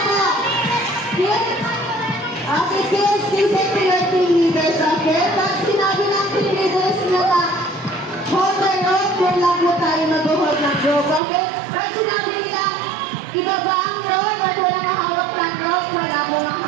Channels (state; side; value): drops out; left; at 11.2 s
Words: po. Okay, kids, listen to your team leaders, okay? Pag sinabi ng team leaders na hold the rope, doon lang po tayo mag-hold ng rope, okay? Pag sinabi nila, ibaba ang rope at walang hawak ng rope, wala mong